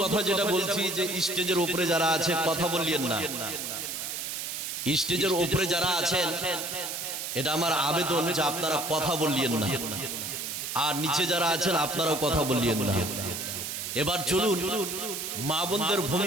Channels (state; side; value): noise; right; hiss, 5 dB below the sound